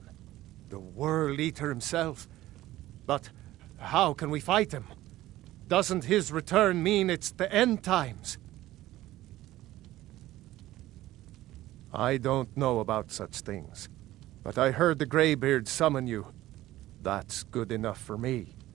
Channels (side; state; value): left; quieter; 15.7 dB